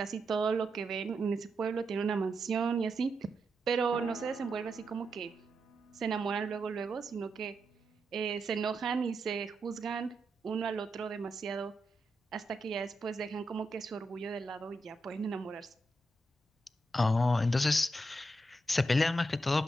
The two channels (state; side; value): normal; both; correlation 0.85